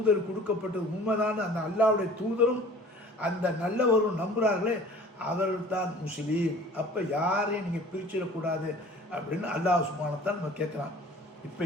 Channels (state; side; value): normal; both; correlation 0.47